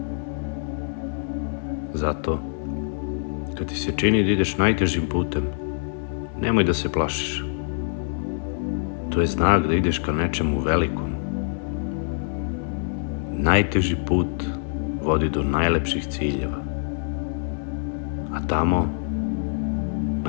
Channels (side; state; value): right; silent; 60 dB below the other